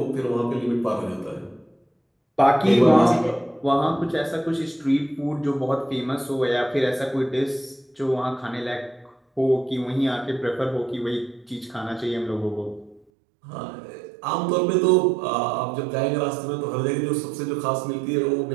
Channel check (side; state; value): left; drops out; at 13.0 s